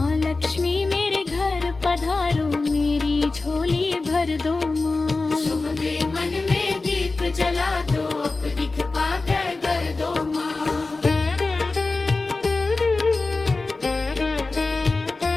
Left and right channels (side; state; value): right; quieter; 3.6 dB